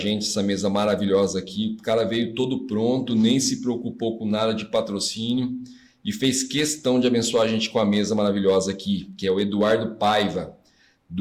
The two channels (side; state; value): both; identical; correlation 1.00